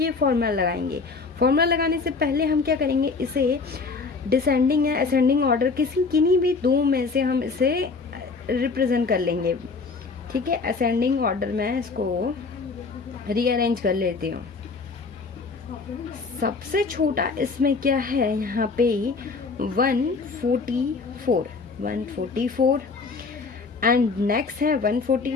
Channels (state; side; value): quieter; right; 4.4 dB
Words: फॉर्मूला लगाएंगे। फॉर्मूला लगाने से पहले हम क्या करेंगे, इसे डिसेंडिंग या असेंडिंग ऑर्डर किन्हीं भी दो में से हम इसे रिप्रेजेंट कर लेंगे। ठीक है, असेंडिंग ऑर्डर में इसको रीअरेंज कर लेती हूँ। सबसे छोटा इसमें क्या है, यहाँ पे 144 एंड नेक्स्ट है